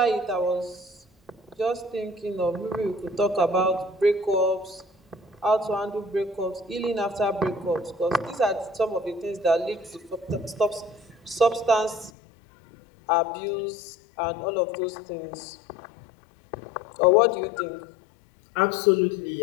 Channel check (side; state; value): right; drops out; at 12.1 s